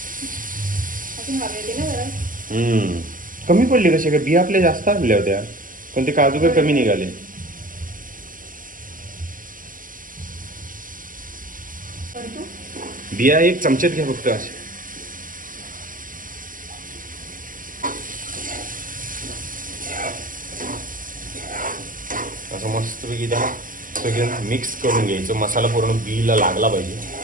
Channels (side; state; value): left; late; 0.40 ms